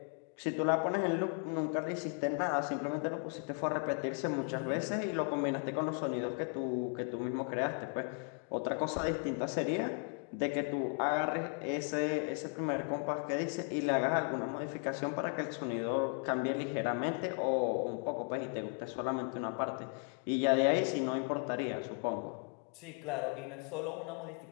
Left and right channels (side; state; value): right; quieter; 37.9 dB